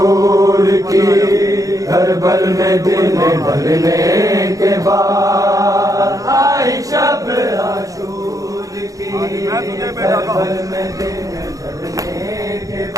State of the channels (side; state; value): left; late; 0.17 ms